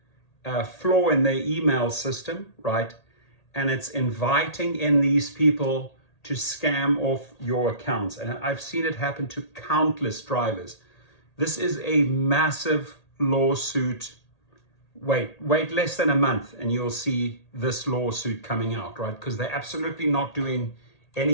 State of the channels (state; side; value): late; right; 1.8 ms